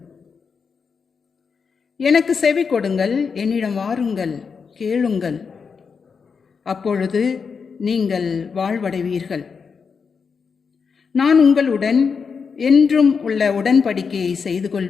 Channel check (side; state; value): right; quieter; 5.7 dB